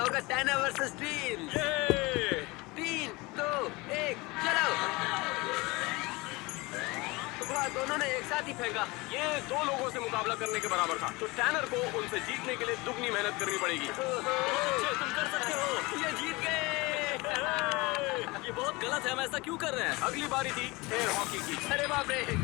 टैनर वर्सेस टीम। ये 3, 2, 1, चलो। वाह, दोनों ने एक साथ ही फेंका। ये 2 लोगों से मुकाबला करने के बराबर था, तो टैनर को उनसे जीतने के लिए दुगनी मेहनत करनी पड़ेगी। तुम कर सकते हो। ये जीत गए। ये बहुत गलत है। हम ऐसा क्यों कर रहे हैं? अगली बारी थी एयर हॉकी की। अरे बाप रे,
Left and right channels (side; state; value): right; quieter; 23.7 dB